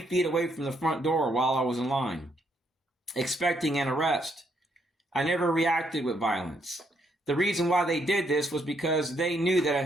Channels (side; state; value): both; normal; correlation 0.73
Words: away from the front door while I was in line, expecting an arrest. I never reacted with violence. The reason why they did this was because they knew that